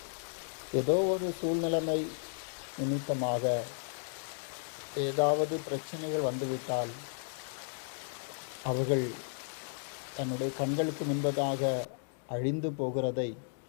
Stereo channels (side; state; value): right; silent; digital silence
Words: ஏதோ ஒரு சூழ்நிலைமை நிமித்தமாக ஏதாவது பிரச்சனைகள் வந்துவிட்டால் அவர்கள் தன்னுடைய கண்களுக்கு முன்பதாக அழிந்து போகிறதை